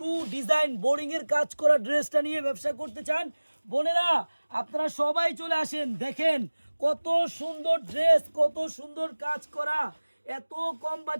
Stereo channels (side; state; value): both; inverted; correlation -1.00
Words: ডিজাইন বোরিংয়ের কাজ করা ড্রেসটা নিয়ে ব্যবসা করতে চান, বোনেরা আপনারা সবাই চলে আসেন। দেখেন কত সুন্দর ড্রেস, কত সুন্দর কাজ করা, এত কম